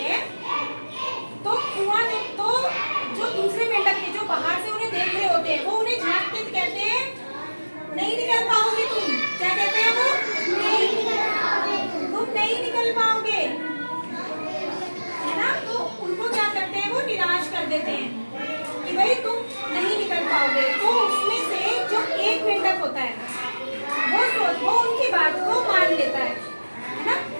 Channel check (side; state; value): both; inverted; correlation -1.00